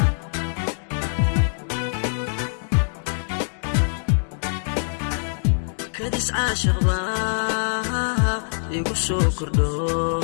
kadis aashaq igu soo kordho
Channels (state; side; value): silent; right; 63 dB below the other